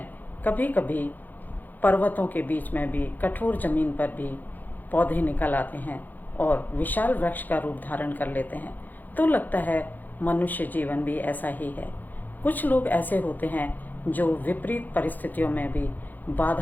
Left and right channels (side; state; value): right; late; 0.085 ms